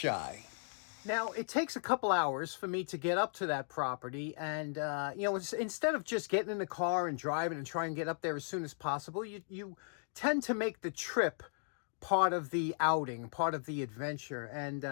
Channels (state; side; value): silent; right; digital silence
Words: Now, it takes a couple hours for me to get up to that property. And, you know, instead of just getting in the car and driving and trying to get up there as soon as possible, you tend to make the trip part of the outing, part of the adventure.